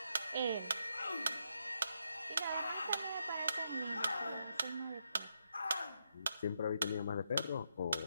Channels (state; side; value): inverted; both; correlation -0.80